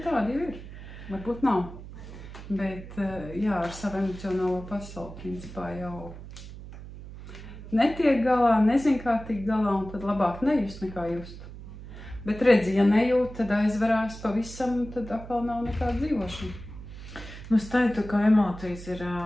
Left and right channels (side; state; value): right; noise; hum, 13 dB below the sound